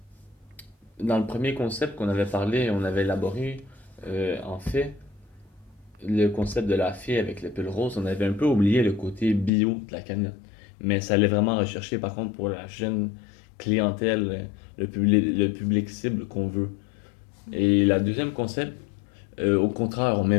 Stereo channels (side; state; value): right; drops out; at 9.5 s